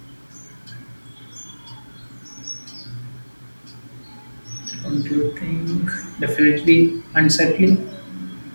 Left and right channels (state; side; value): inverted; both; correlation -1.00